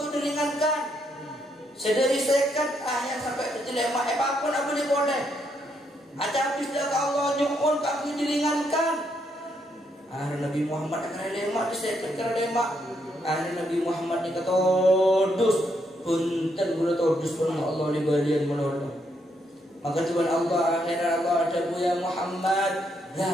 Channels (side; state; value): both; normal; correlation 0.76